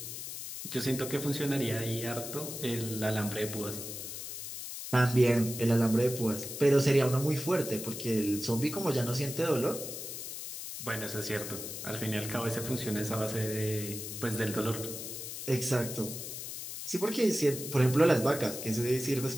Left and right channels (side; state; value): left; noise; hiss, 8 dB below the sound